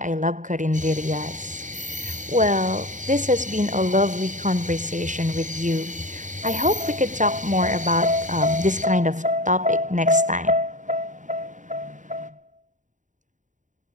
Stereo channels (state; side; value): late; left; 0.36 ms